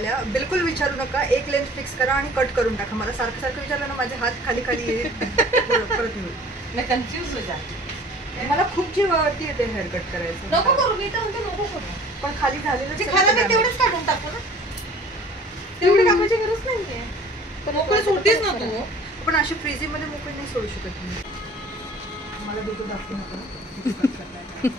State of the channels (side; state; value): both; normal; correlation 0.48